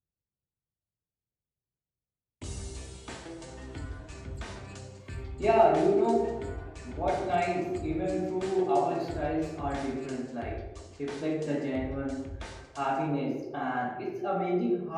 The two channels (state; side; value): identical; both; correlation 1.00